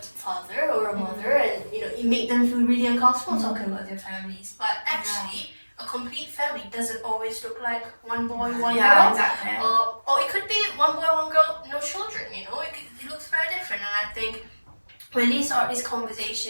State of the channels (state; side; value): inverted; both; correlation -1.00